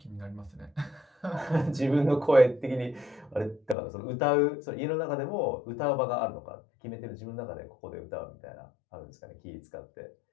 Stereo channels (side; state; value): right; drops out; at 3.8 s